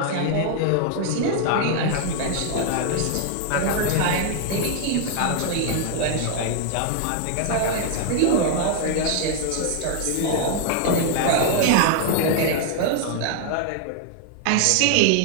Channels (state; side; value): different; both; correlation 0.00